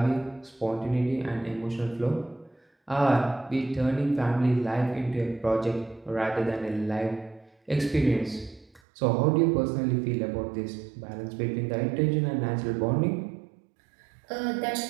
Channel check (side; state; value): left; drops out; at 8.8 s